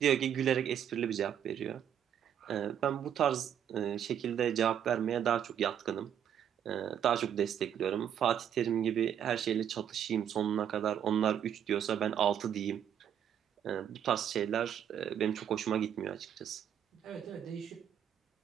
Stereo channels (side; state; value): left; quieter; 9.2 dB